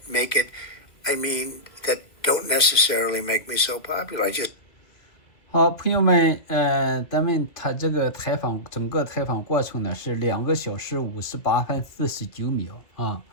make it, that don't necessarily make me so popular. I just 好，朋友们，他这个整个采访过程呢是2个小时58分49秒啊，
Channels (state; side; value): late; right; 2.1 ms